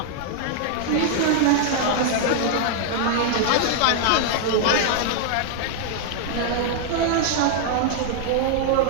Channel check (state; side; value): different; both; correlation -0.01